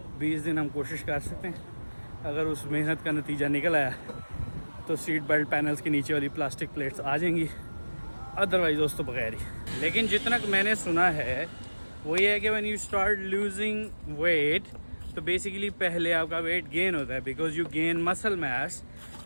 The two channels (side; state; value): both; inverted; correlation -1.00